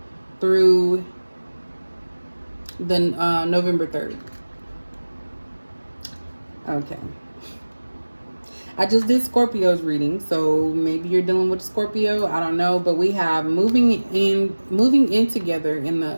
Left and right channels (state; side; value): inverted; both; correlation -1.00